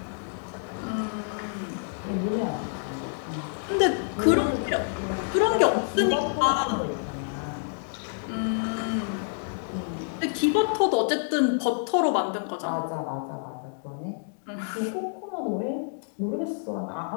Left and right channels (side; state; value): right; silent; digital silence